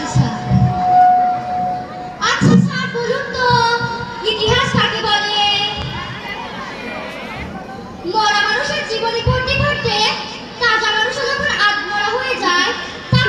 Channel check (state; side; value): identical; both; correlation 1.00